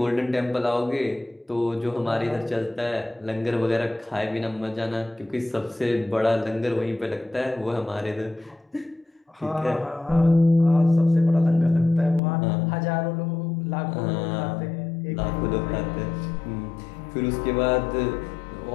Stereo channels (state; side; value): drops out; right; at 12.2 s